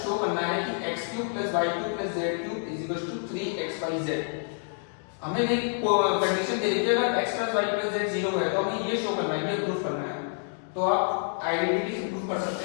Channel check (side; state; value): right; silent; digital silence